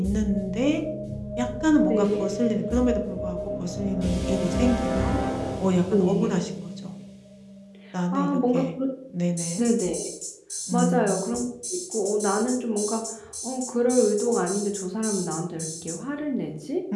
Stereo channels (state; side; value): identical; both; correlation 1.00